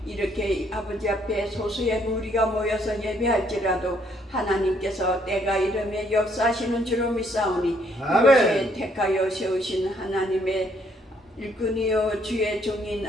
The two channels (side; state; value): both; normal; correlation 0.68